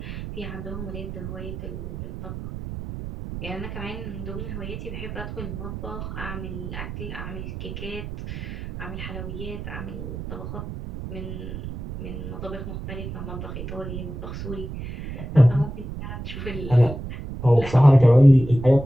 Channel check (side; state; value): right; noise; rumble, 8 dB below the sound